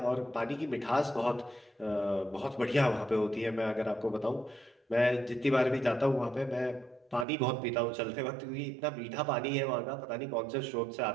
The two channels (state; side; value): drops out; left; at 7.2 s